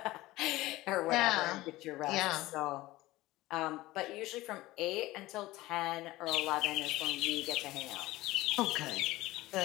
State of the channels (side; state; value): right; quieter; 18.2 dB